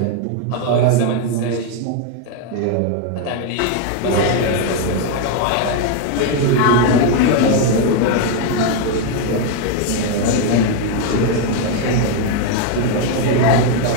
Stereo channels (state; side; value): different; both; correlation 0.01